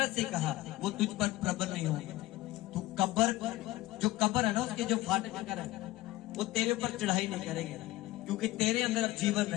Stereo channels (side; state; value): right; quieter; 17.6 dB